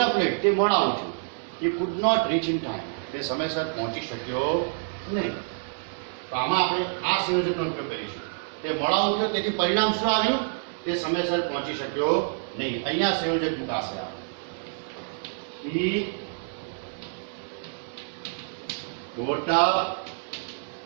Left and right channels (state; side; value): silent; left; 60 dB below the other